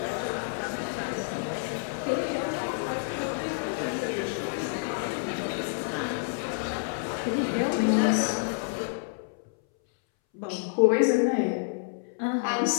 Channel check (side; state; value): right; silent; 59 dB below the other